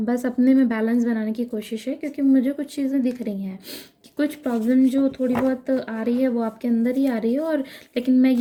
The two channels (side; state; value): both; identical; correlation 1.00